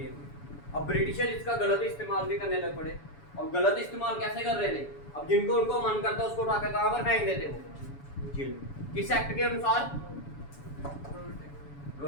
में। अब ब्रिटिशर इसका गलत इस्तेमाल भी करने लग पड़े। और गलत इस्तेमाल कैसे कर रहे थे? अब जिनको उनको मन करता उसको उठाकर कहां पर फेंक देते हो? जेल में। किस एक्ट के अनुसार?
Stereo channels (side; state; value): right; late; 7.0 ms